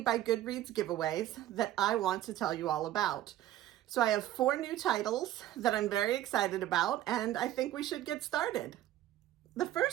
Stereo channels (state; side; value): quieter; left; 13.3 dB